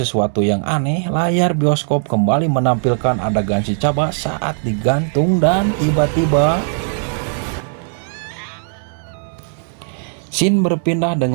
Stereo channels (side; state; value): left; silent; 67 dB below the other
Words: yang aneh. Layar bioskop kembali menampilkan adegan si Chaba saat digantung dan tiba-tiba scene berpindah